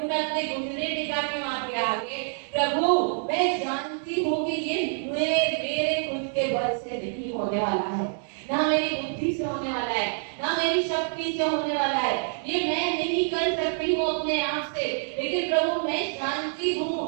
मैं अपने घुटने टेका के वहां पे आगे, प्रभु मैं जानती हूँ कि ये मेरे खुद के बल से नहीं होने वाला है, ना मेरी बुद्धि बुद्धि से होने वाला है, ना मेरी शक्ति से होने वाला है। ये मैं नहीं कर सकती हूँ अपने आप से, लेकिन प्रभु मैं जानती हूँ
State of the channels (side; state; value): left; silent; digital silence